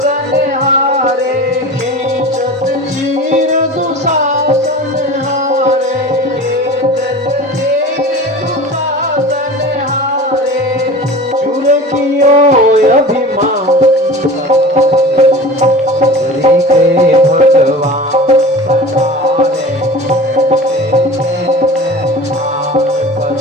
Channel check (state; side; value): normal; both; correlation 0.36